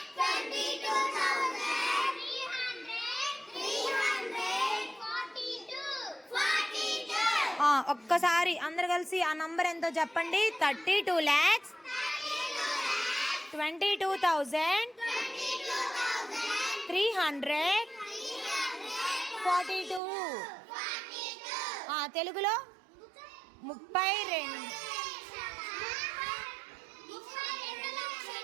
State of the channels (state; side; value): drops out; left; at 20.0 s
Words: 32,000. ఒక్కసారి అందరు కలిసి ఆ నంబర్ ఎంతో చెప్పండి. 32 lakhs 22,300 42. తెలుగులో 32.